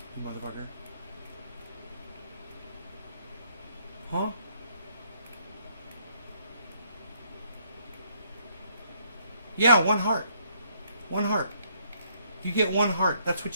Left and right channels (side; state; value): both; inverted; correlation -0.69